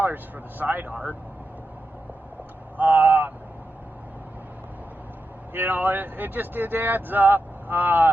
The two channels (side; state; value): both; normal; correlation 0.89